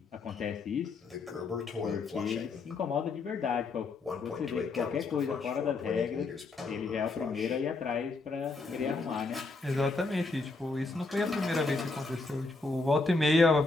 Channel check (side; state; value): right; quieter; 3.7 dB